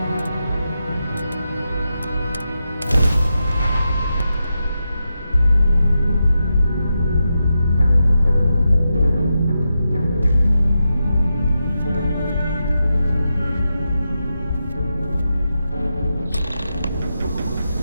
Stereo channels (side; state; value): both; inverted; correlation -0.87